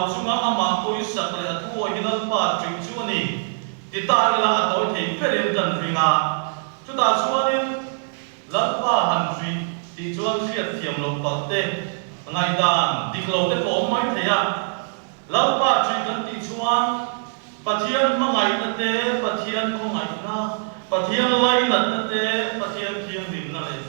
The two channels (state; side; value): silent; left; digital silence